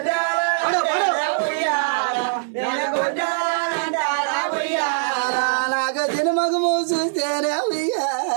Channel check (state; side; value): silent; left; digital silence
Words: నాకు తినమగము చూస్తేనే